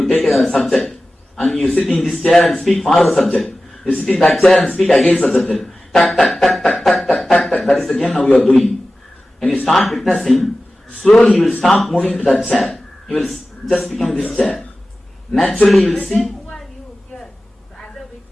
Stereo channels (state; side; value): normal; both; correlation 0.95